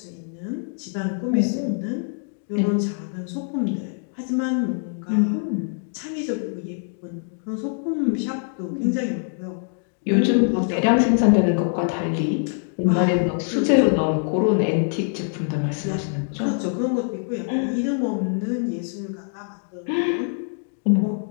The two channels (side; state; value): right; silent; 56 dB below the other